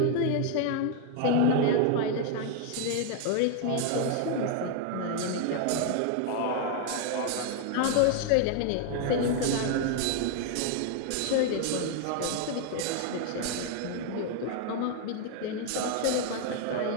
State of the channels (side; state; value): both; different; correlation 0.00